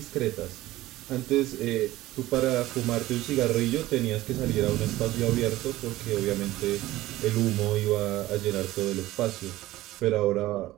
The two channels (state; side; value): quieter; left; 16.7 dB